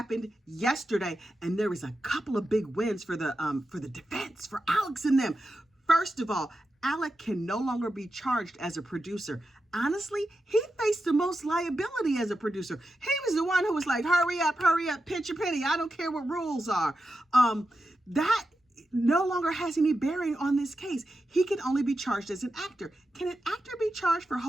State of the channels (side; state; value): both; normal; correlation 0.90